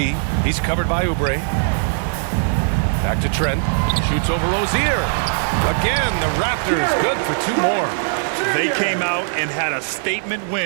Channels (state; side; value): silent; left; digital silence